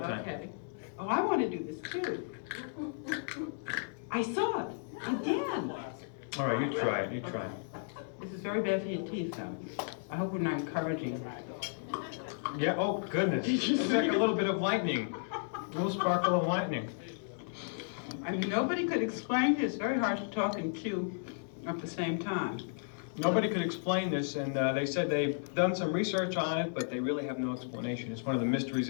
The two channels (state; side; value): silent; right; digital silence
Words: Okay. Oh, I want to do this too. I saw it again. All right, you try it. You try it. This is very bad for your teeth, though. I hope we're not encouraging. Yeah. Oh goodness. It's like a little bit of lightning. A little sparkle of lightning. I mean, nobody could explain this. It's very hard to talk and chew at the same time. Nobody could explain this, and they said they've done some research on it, but they really have no explanation. It's one of the mysteries